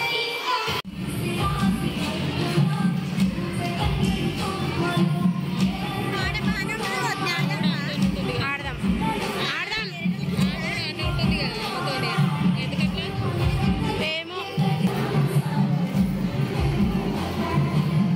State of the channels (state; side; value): identical; both; correlation 1.00